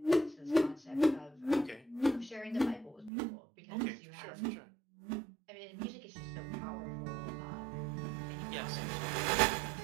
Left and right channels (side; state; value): left; drops out; at 3.1 s